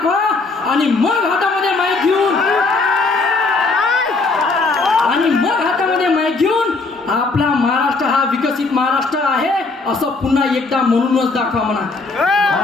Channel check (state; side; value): quieter; right; 3.8 dB